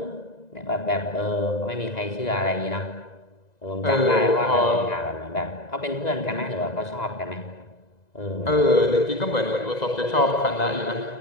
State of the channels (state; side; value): late; right; 2.0 ms